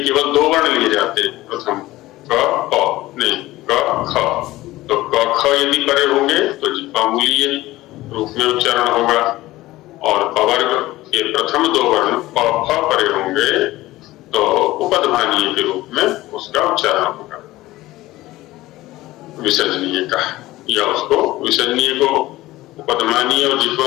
केवल दो वर्ण लिए जाते हैं, प्रथम क प नहीं क ख। तो क ख यदि परे होंगे तो जिह्वामूलीय रूप में उच्चारण होगा, और पवर्ग के प्रथम दो वर्ण प फ परे होंगे तो उपधमानीय के रूप में उसका उच्चारण होगा विसर्जनीय का, या उसको विसर्जनीय को उपधमानीय और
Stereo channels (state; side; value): quieter; right; 17.5 dB